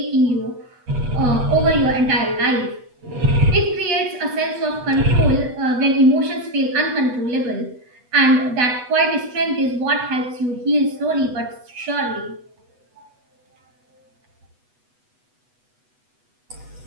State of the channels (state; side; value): late; left; 8.1 ms